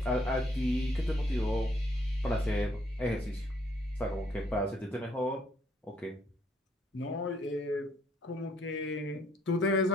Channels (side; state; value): both; normal; correlation 0.67